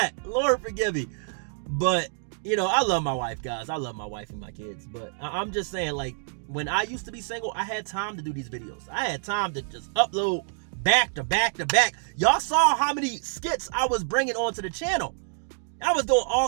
Lord forgive me. But, I love my wife, guys. I love my wife and my kids. But I'm just saying, like, when I used to be single, I had time to do these videos. I had time to just upload back to back to back. Y'all saw how many skits I was bringing onto the channel. I was doing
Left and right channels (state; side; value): silent; left; digital silence